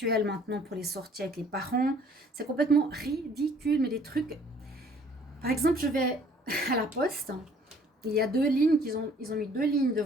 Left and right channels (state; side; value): normal; both; correlation 0.57